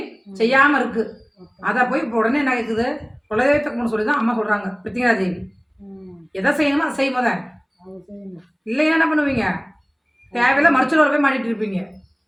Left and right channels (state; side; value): identical; both; correlation 1.00